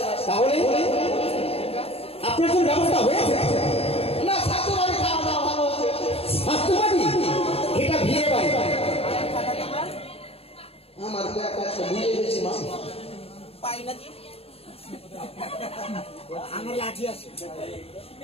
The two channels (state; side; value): late; right; 0.28 ms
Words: না। তাহলে আপনার কোন ব্যবস্থা হয়েছে? না, শাশুড়ি বাড়ি খাওয়া দাওয়া ভালো হচ্ছে। স্বাস্থ্যবাদী, এটা বিয়ে বাড়ি। আমার ব্যাগ আছে, ভুলে গেছি মা।